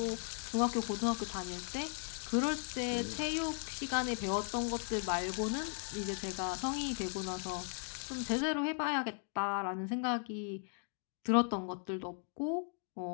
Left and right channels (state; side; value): silent; right; 53 dB below the other